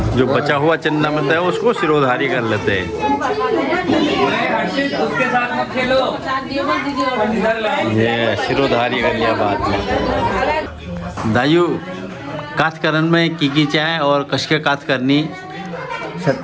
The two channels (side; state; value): both; identical; correlation 1.00